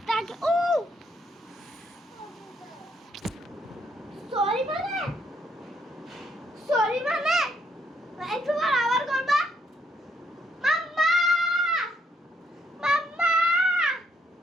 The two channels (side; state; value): both; normal; correlation 0.73